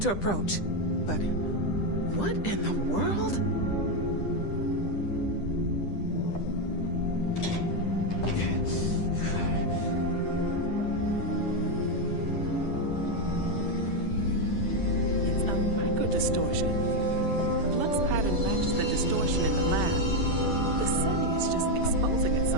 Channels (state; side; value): late; right; 10 ms